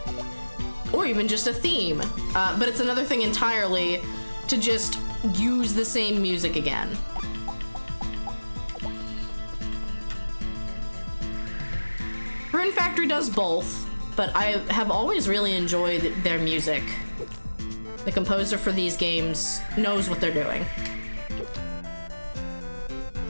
or even just a theme. But it's another thing entirely to just use the same music again. Rune Factory does both, but I have always really enjoyed their music. The composer for these games knows what they're doing.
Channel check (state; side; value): inverted; both; correlation -1.00